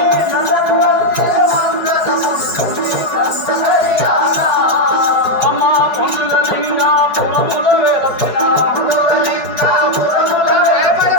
అమ్మ పొందుల లింగాపురముల వెలసిన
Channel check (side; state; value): right; late; 4.9 ms